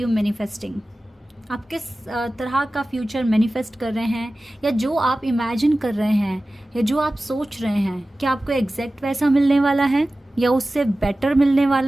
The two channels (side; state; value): both; normal; correlation 0.96